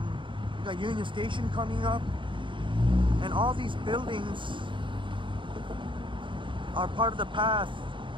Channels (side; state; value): left; late; 0.24 ms